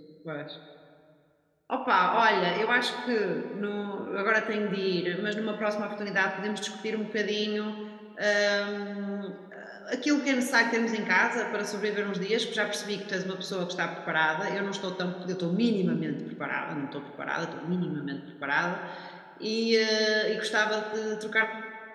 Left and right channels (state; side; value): identical; both; correlation 1.00